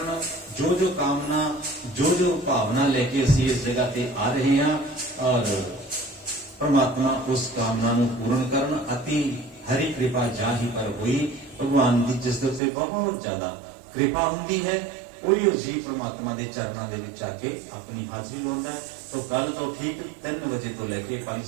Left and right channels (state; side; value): drops out; left; at 12.6 s